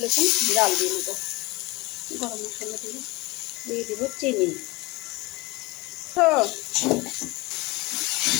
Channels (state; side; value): quieter; right; 23.2 dB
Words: জাল দিয়ে নেব। গরম মশলা দিয়ে দিব চিনি।